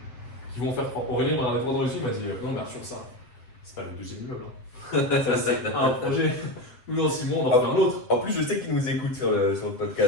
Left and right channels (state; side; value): late; right; 7.8 ms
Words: qui vont faire. Aurélien m'a répondu dans le il m'a dit non, mais sur ça, c'est pas le deuxième immeuble. Hein. Ça, c'est un projet. Nous, dans 6 mois, on en fait un autre. En plus, je sais qu'ils nous écoutent sur le